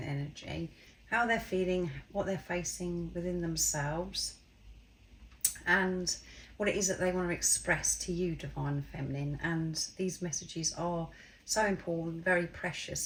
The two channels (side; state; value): both; identical; correlation 1.00